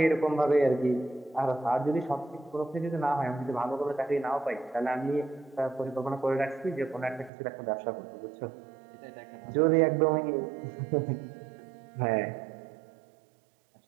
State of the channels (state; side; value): drops out; left; at 7.3 s